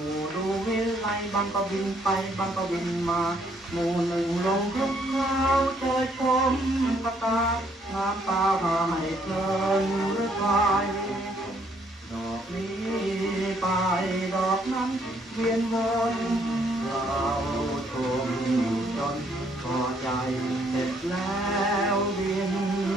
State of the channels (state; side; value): normal; both; correlation 0.68